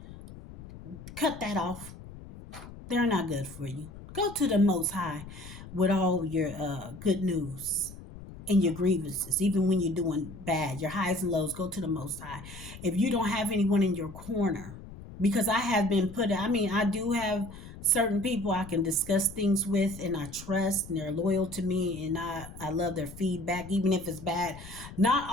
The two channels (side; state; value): left; noise; rumble, 15 dB below the sound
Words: cut that off. They're not good for you. Go to the Most High with all your good news and your grievances, even when you're doing bad, your highs and lows. Go to the Most High. If you don't have anyone in your corner, because I have been put, I do have certain people I can discuss things with and I trust and they're loyal to me and I love their feedback, even if it's bad. Not